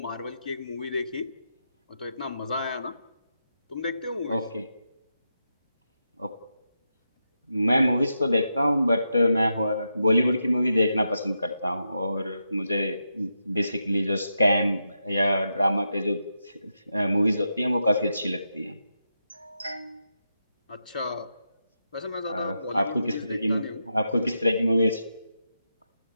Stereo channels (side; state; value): both; inverted; correlation -0.86